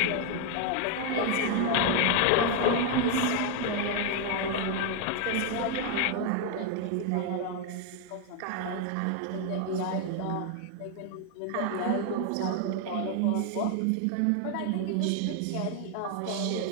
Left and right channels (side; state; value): both; different; correlation 0.01